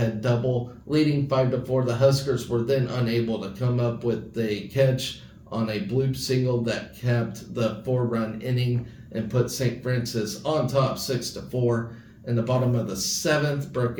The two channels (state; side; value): identical; both; correlation 1.00